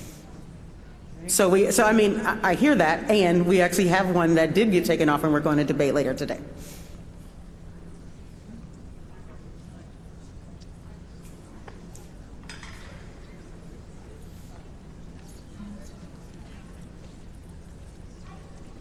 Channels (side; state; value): both; identical; correlation 1.00